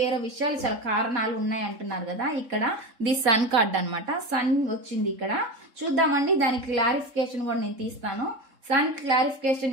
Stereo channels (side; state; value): left; late; 3.7 ms